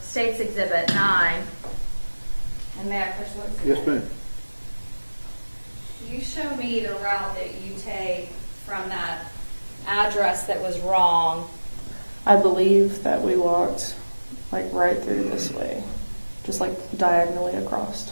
State's Exhibit 9. And may I push what's in Yes, it? ma'am. You show me the route that you take from that address that was wrong. I believe that we walked like right through this way, just like diagonally across.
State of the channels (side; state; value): both; inverted; correlation -1.00